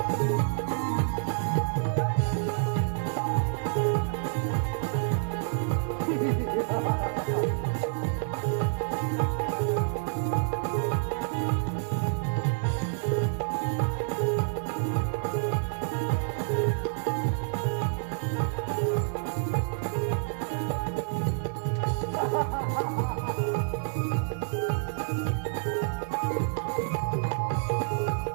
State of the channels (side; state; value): left; silent; digital silence